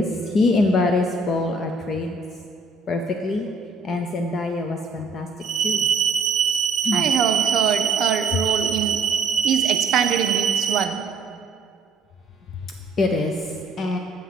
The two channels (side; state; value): left; quieter; 3.1 dB